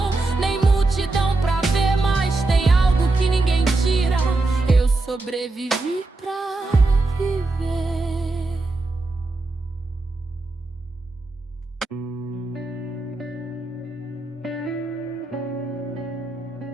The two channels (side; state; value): left; quieter; 3.2 dB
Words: nem multidão pra ver, mas tem algo que ninguém tira. Eu sobrevivi pra viver.